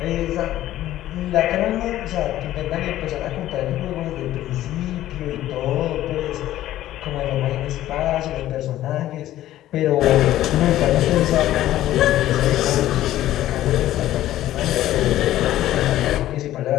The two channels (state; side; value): quieter; right; 13.8 dB